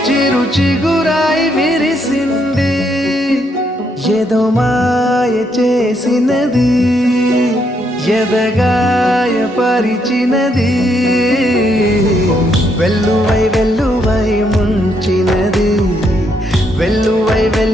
చిరు చిగురాయి విరిసింది ఏదో మాయ చేసినది ఎదగాయ పరిచినది వెల్లువై వెల్లువై ముంచినది వెల్లువై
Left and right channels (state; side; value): normal; both; correlation 0.75